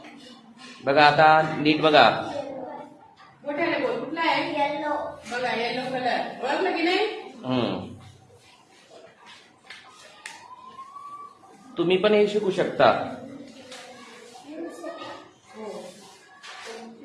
बघा आता नीट बघा. मोठ्याने बोल. कुठला आहे? येलो. बघा येलो कलर ओळखलं की नाही? तुम्ही पण हे शिकू शकता.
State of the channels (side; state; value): both; identical; correlation 1.00